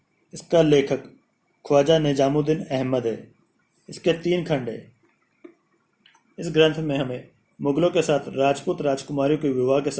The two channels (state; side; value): identical; both; correlation 1.00